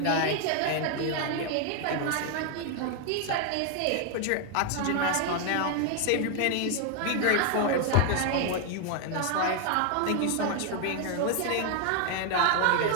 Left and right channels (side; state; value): both; different; correlation 0.00